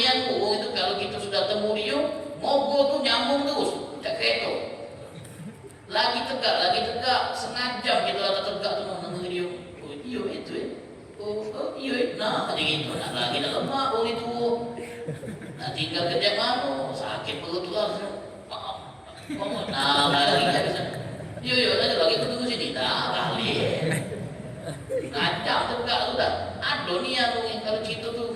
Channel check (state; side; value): identical; both; correlation 1.00